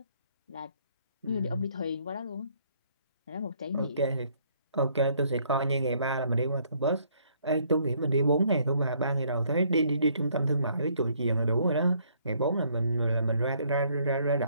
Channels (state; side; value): inverted; both; correlation -0.65